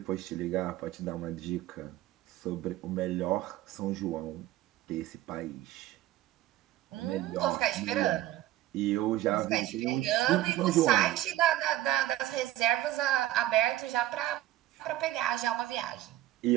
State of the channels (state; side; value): quieter; left; 14.6 dB